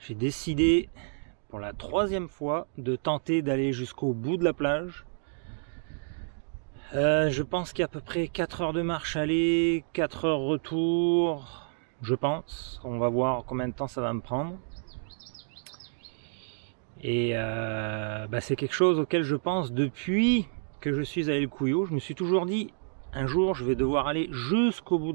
décidé pour la 3e fois de tenter d'aller jusqu'au bout de la plage. Je pense qu'il y a à peu près 4 heures de marche aller, 4 heures retour, je pense. On va voir combien de temps ça va me prendre. Et c'est quelque chose auquel je pense depuis que je suis à El Cuyo. Je me suis toujours dit, un jour je vais devoir aller jusqu'au bout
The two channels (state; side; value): silent; left; digital silence